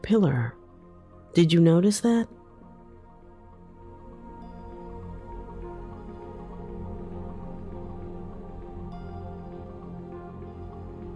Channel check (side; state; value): both; identical; correlation 1.00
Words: Did you notice that?